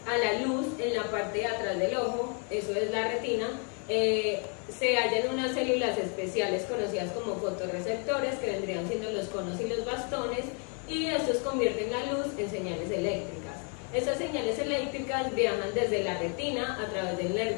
a la luz en la parte de atrás del ojo, eso es la retina, se hallan unas células especiales conocidas como fotorreceptores, que vendrían siendo los conos y los bastones, y estos convierten la luz en señales eléctricas. Estas señales eléctricas viajan desde la retina a través del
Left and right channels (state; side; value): quieter; right; 38.8 dB